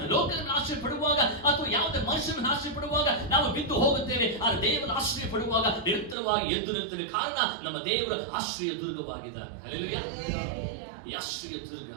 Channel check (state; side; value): drops out; left; at 6.2 s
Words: ಲೋಕದ ಮೇಲೆ ಆಶ್ರಯ ಪಡುವಾಗ, ಅಥವಾ ಯಾವುದೇ ಮನುಷ್ಯನ ಮೇಲೆ ಆಶ್ರಯ ಪಡುವಾಗ ನಾವು ಬಿದ್ದು ಹೋಗುತ್ತೇವೆ. ಆದರೆ ದೇವರ ಆಶ್ರಯ ಪಡುವಾಗ ನಿರಂತರವಾಗಿ ಎದ್ದು ನಿಲ್ತೇವೆ. ಕಾರಣ ನಮ್ಮ ದೇವರ ಆಶ್ರಯ ದುರ್ಗವಾಗಿದ್ದಾರೆ. ಹಲ್ಲೆಲೂಯಾ. ಈ ಆಶ್ರಯ ದುರ್ಗ